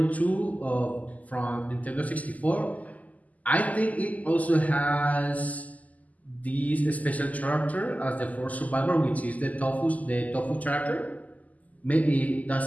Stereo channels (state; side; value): late; right; 0.076 ms